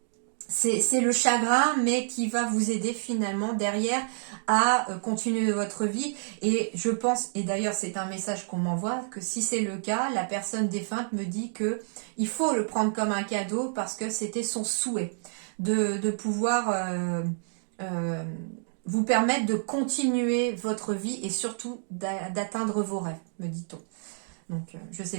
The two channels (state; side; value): silent; left; digital silence